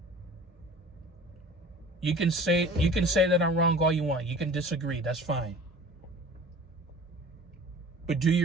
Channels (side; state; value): both; normal; correlation 0.43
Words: You can say that I'm wrong all you want. You can disagree. That's fine. But do